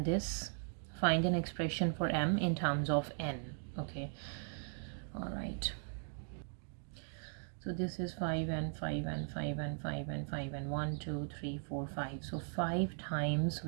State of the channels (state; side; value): silent; left; 52 dB below the other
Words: this. Find an expression for m in terms of n. Okay, all right. So this is 5 and 5 and 5 and 5 and 5 and 1, 2, 3, 4, 5. So 5 times